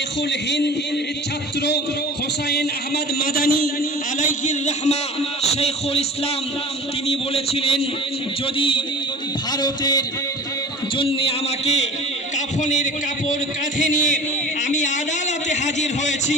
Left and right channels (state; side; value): normal; both; correlation 0.39